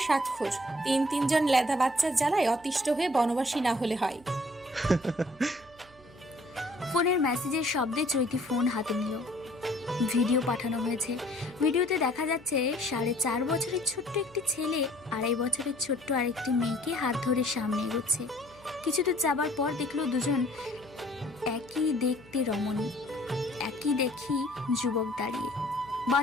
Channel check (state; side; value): noise; right; hum, 26 dB below the sound